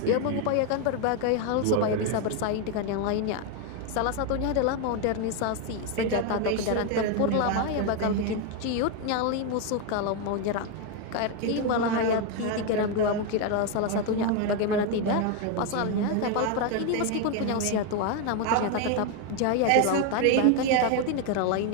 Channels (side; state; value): both; different; correlation 0.01